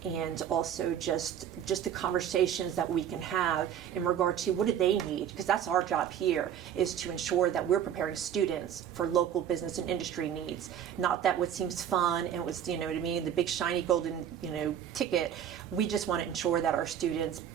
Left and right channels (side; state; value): left; quieter; 9.5 dB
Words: and also just the conversations that we can have in regard to what do they need, because that's our job here, is to ensure that we're preparing students for local business and industry needs. Not that what seems fun and what's, what I mean, the big shiny golden, ticket. We just want to ensure that our students